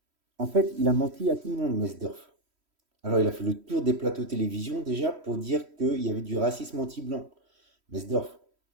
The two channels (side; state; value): left; late; 3.1 ms